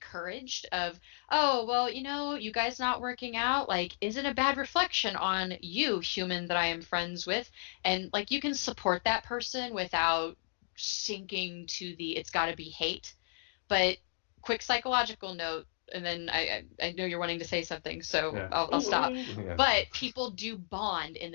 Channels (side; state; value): right; silent; digital silence